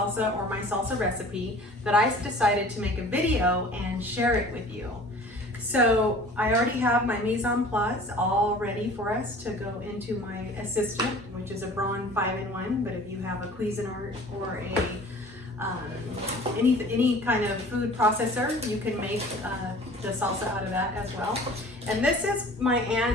or my salsa recipe that I decided to make a video and share it with you. So I already have my mise en place all ready for us to go into my assistant, which is a Braun 5-in-1, but if you have a Cuisinart or a any kind of food processor, you can make the salsa out of that as well. And this is my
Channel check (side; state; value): both; normal; correlation 0.46